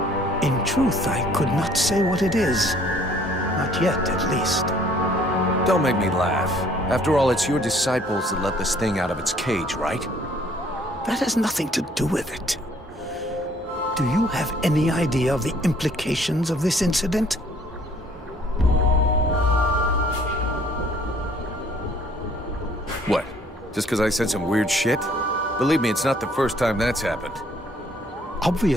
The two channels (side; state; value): both; normal; correlation 0.60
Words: In truth, I could not say what it is. Not yet, at least. Don't make me laugh. After all, it's your disciples that let this thing out of its cage, right? That has nothing to do with it. Do you have any idea of the implications of this incident? What? Just because I said some weird shit? Believe me, it's not the first time that's happened.